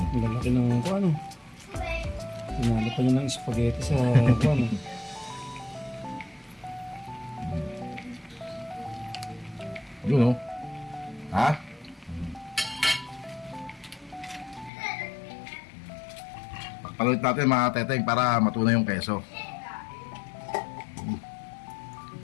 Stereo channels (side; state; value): right; drops out; at 14.7 s